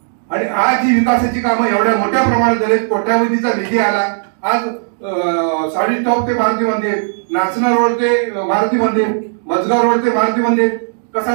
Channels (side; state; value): left; silent; digital silence